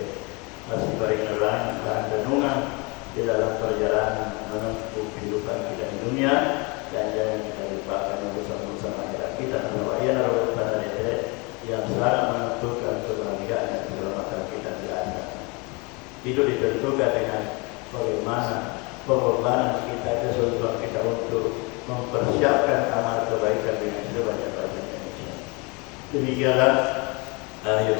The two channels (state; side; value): quieter; right; 28.8 dB